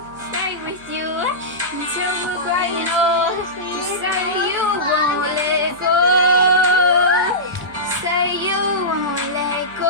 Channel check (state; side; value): noise; right; hum, 25 dB below the sound